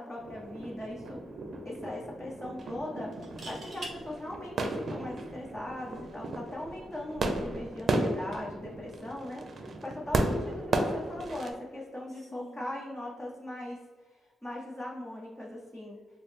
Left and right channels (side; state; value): both; normal; correlation 0.84